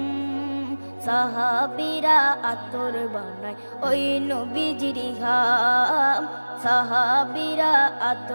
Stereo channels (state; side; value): inverted; both; correlation -1.00